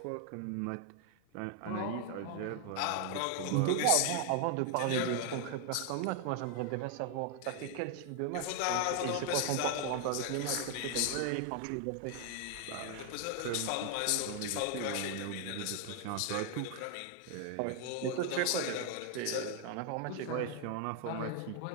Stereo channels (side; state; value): both; different; correlation 0.00